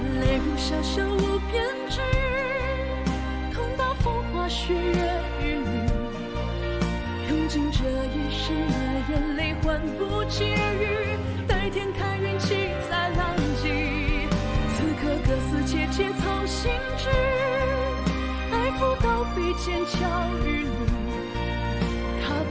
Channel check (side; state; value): both; identical; correlation 1.00